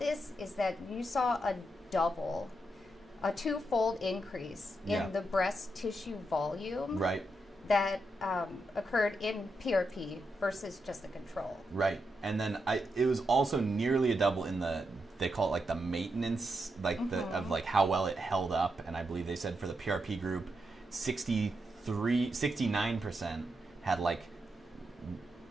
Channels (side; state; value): both; normal; correlation 0.84